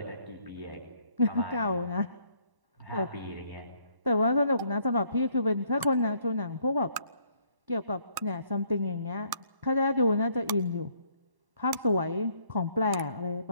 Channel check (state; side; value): late; left; 1.1 ms